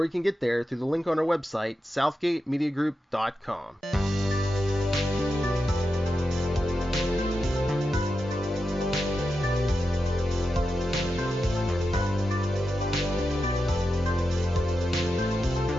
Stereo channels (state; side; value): normal; both; correlation 0.89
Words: you can get there through the link on our website, southgatemediagroup.com.